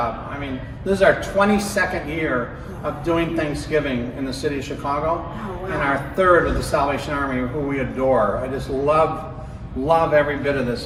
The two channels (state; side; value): identical; both; correlation 1.00